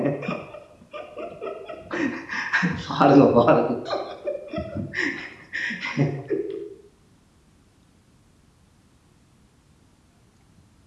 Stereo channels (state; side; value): identical; both; correlation 1.00